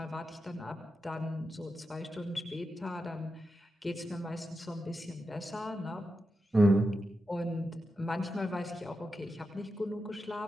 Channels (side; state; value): both; normal; correlation 0.89